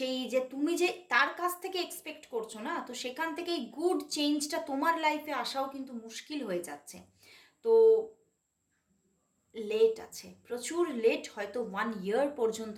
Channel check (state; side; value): identical; both; correlation 1.00